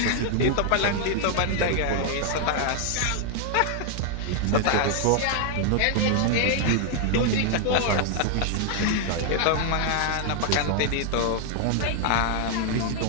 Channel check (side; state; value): both; different; correlation 0.00